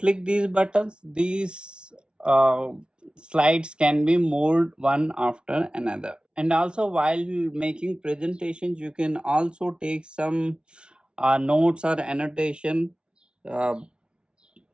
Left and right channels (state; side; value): late; left; 0.056 ms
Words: these buttons, these slides can be moved one after another. And also while making presentations, you can also take some notes or annotation, uh,